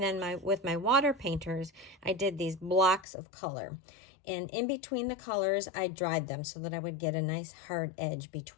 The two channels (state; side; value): drops out; right; at 3.1 s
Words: then with my water painters I did these blocks of color, and in between the colors I dried them so that I would get a nice hard edge